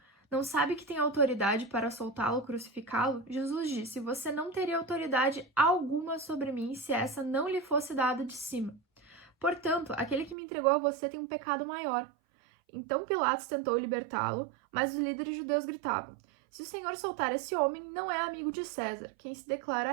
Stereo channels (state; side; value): drops out; left; at 10.4 s